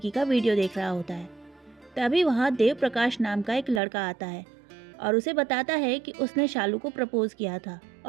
का वीडियो देख रहा होता है। तभी वहां देव प्रकाश नाम का एक लड़का आता है और उसे बताता है कि उसने शालू को प्रपोज किया था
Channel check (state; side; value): drops out; left; at 3.8 s